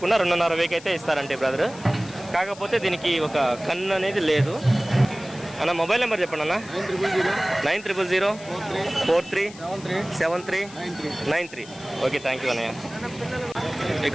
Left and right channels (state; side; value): noise; left; hiss, 19 dB below the sound